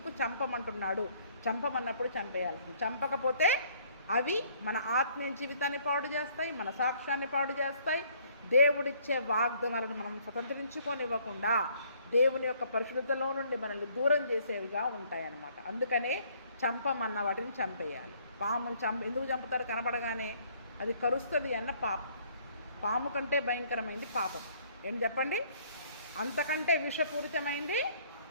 చంపమంటున్నాడు? చంపమన్నప్పుడు చంపేయాల్సింది. చంపకపోతే అవి మన ఆత్మీయ జీవితాన్ని పాడు చేస్తాయి, మన సాక్ష్యాన్ని పాడు చేస్తాయి. దేవుడిచ్చే వాగ్దానాలను మనం స్వతంత్రించుకోనివ్వకుండా దేవుని యొక్క పరిశుద్ధతలో నుండి మనల్ని దూరం చేసేవిగా ఉంటాయన్నమాట. అందుకనే చంపమన్న వాటిని చంపేయాలి. పామును ఎందుకు చంపుతారు? కనపడగానే అది కరుస్తుంది అన్న పాము కంటే భయంకరమైంది పాపం. ఏం చెప్పండి? అంతకంటే విషపూరితమైంది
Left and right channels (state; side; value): inverted; both; correlation -0.62